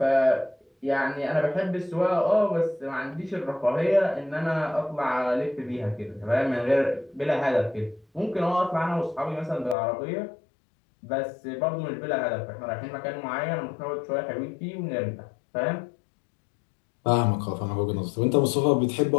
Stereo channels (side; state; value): right; drops out; at 9.8 s